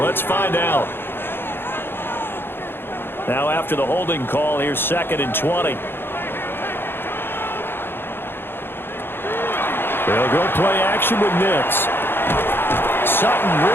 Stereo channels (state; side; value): late; right; 0.10 ms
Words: find out. Now after the holding call, here's 2nd and 20. They'll go play action with Nix. Sutton